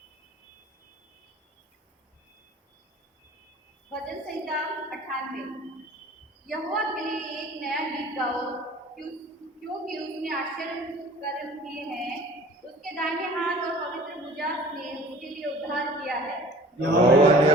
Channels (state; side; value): normal; both; correlation 0.47